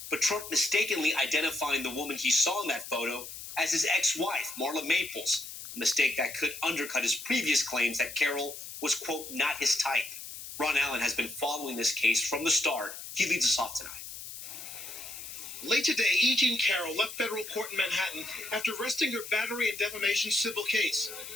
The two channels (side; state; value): left; noise; hiss, 11 dB below the sound